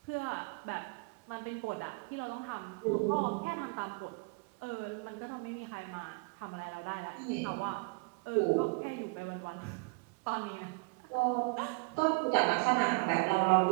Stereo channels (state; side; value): quieter; left; 31.2 dB